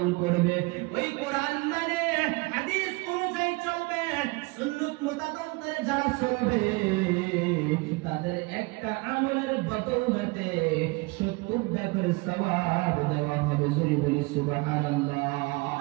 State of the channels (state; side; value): quieter; left; 25.6 dB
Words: করবে, ওই কোরআন মানে হাদিস অনুযায়ী চলবে, সুন্নাত মোতাবেক যারা চলবে তাদের একটা আমলের বদৌলতে 70টা করে সওয়াব দেওয়া হবে। জোরে বলি সুবহানাল্লাহ।